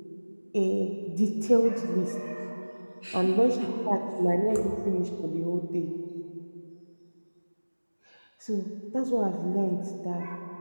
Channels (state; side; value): inverted; both; correlation -1.00